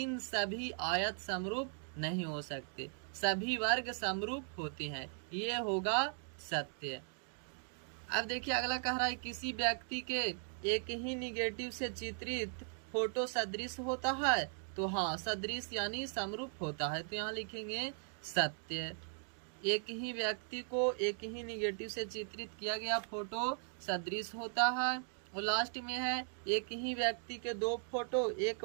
सभी आयत समरूप नहीं हो सकते। सभी वर्ग समरूप होते हैं, ये होगा सत्य। अब देखिए अगला कह रहा है किसी व्यक्ति के एक ही निगेटिव से चित्रित फोटो सदृश होता है। तो हाँ, सदृश यानी समरूप होता है, तो यहाँ लिखेंगे सत्य। एक ही व्यक्ति को एक ही निगेटिव से चित्रित किया गया फोटो सदृश होता है। और लास्ट में है एक ही व्यक्ति के 2 फोटो 1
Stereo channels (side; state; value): left; silent; 52 dB below the other